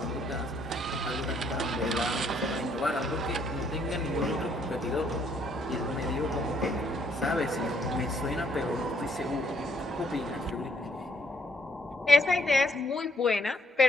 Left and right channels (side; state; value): both; normal; correlation 0.69